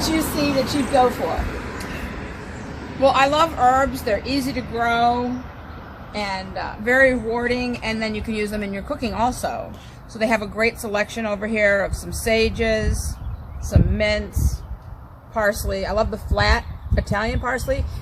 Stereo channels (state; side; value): identical; both; correlation 1.00